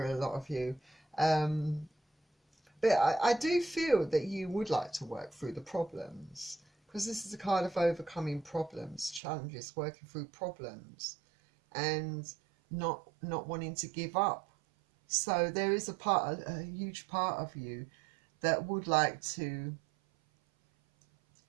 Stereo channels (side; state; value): left; drops out; at 9.2 s